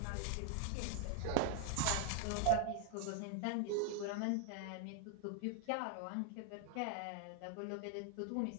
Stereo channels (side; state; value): both; different; correlation 0.00